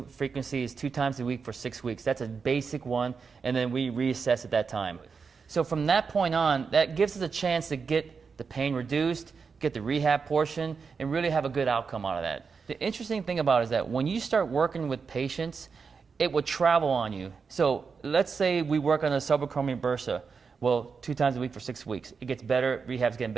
frequency is 2 times a week for 6 weeks. That's a basic one, and then we reassess at that time. So from that point on, that gives us a chance to get the pain reduced, get the rehab portion, and really have a good outcome out of that. The interesting thing about it is that when you start working with patients, it will travel on you. So let's say we work on a subacromial bursa. Well, 2 times a week for 6 weeks. It gets better, rehab's getting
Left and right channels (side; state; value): left; quieter; 5.4 dB